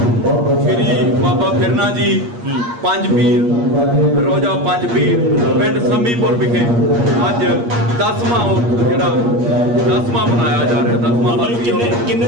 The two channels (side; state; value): left; late; 8.5 ms